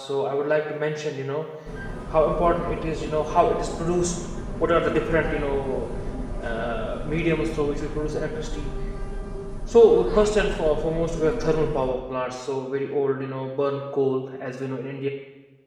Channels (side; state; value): both; identical; correlation 1.00